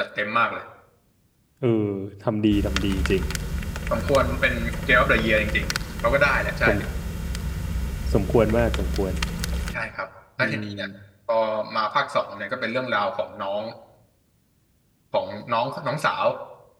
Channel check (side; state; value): both; identical; correlation 1.00